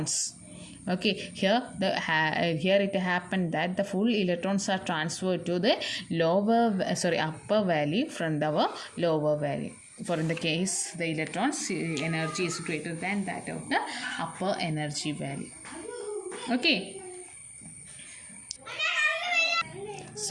Okay, here it happened that the full electrons are transferred to the upper valley from our lower valley. For in the case the electrons energy is greater than that of the upper energy valley. Okay,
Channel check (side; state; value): both; identical; correlation 1.00